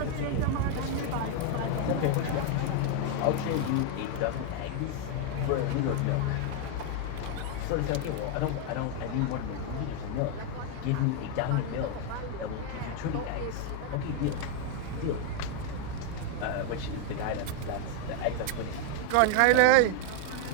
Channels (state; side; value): different; both; correlation 0.01